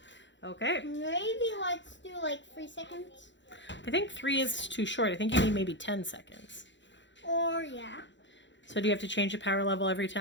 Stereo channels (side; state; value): right; late; 0.53 ms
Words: Okay. Maybe let's do like 3 seconds. I think 3 is too short. I think you need maybe 10 seconds. Or yeah. So do you have to change the power level every